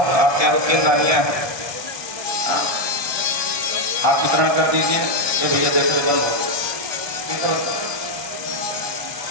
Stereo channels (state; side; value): late; left; 1.2 ms